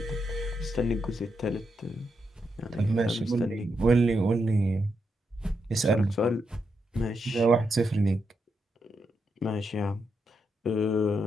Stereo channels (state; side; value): normal; both; correlation 0.83